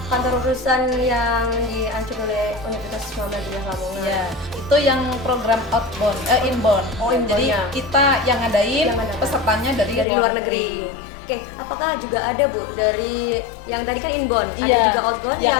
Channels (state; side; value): drops out; right; at 10.1 s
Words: kantor urusan yang diancur oleh Universitas Muhammadiyah Lamongan. Ya, itu yang program inbound. Oh, inbound, Jadi ya. kita yang ngadain, Yang ngadain. pesertanya dari Luar negeri. Oke, apakah juga ada Bu dari yang tadi kan inbound, ada Iya, juga outbound yang